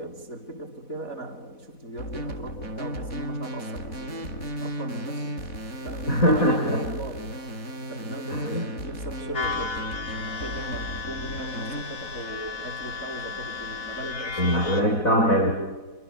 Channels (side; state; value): right; late; 4.1 ms